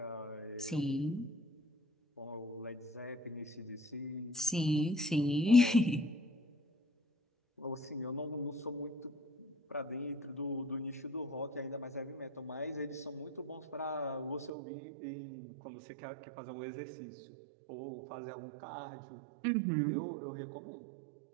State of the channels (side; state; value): left; drops out; at 14.5 s